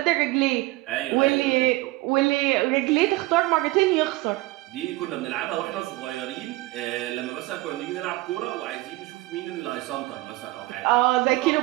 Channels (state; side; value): quieter; left; 20.3 dB